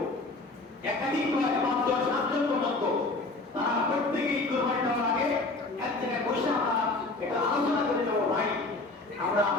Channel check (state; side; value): quieter; right; 3.2 dB